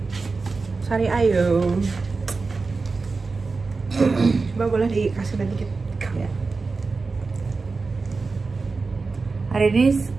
Sari ayo. Coba boleh dikasih dikit ya. Hari ini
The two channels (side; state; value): left; quieter; 4.1 dB